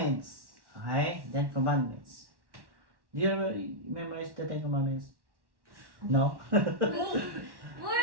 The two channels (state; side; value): late; left; 1.1 ms